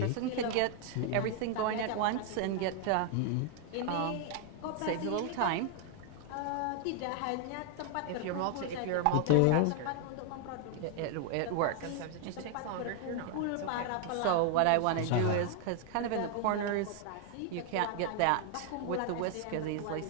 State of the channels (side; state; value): both; different; correlation 0.00